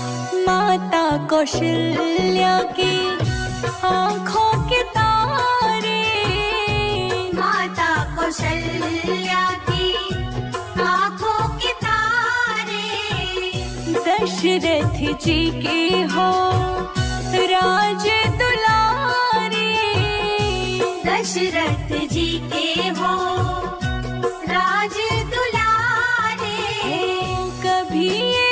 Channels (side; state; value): both; identical; correlation 1.00